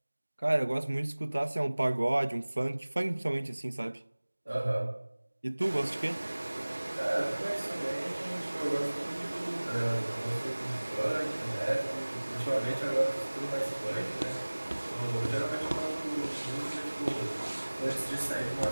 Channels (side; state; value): both; inverted; correlation -1.00